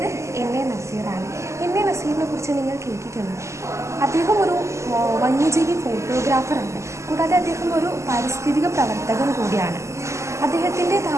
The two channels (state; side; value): late; left; 0.14 ms